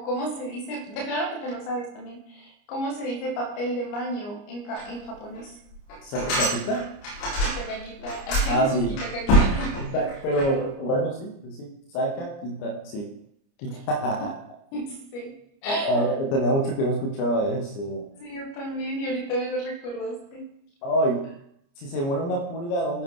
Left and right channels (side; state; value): right; late; 29 ms